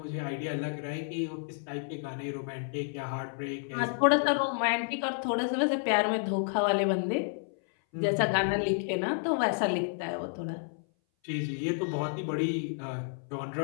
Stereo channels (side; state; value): right; silent; 57 dB below the other